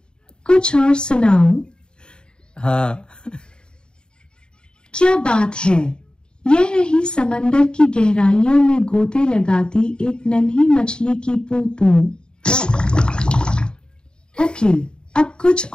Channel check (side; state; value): right; late; 0.048 ms